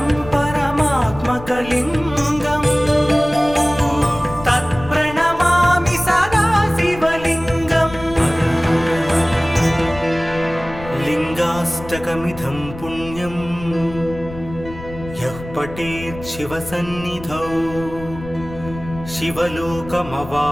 परमात्मकलिङ्गम् तत्प्रणमामि सदा शिवलिङ्गम् लिङ्गाष्टकमिदं पुण्यं यः पठेत् शिवसन्निधौ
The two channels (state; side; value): noise; left; rumble, 14 dB below the sound